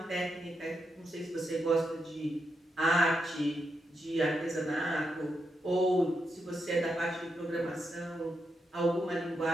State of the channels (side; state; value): both; normal; correlation 0.84